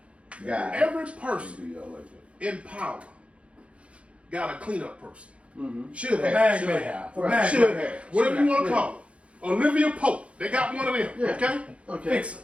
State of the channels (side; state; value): left; late; 0.061 ms